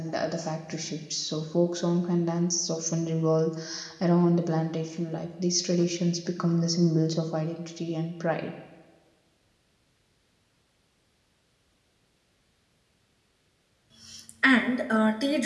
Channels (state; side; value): identical; both; correlation 1.00